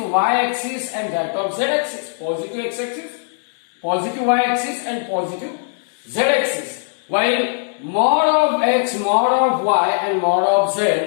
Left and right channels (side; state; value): right; silent; 66 dB below the other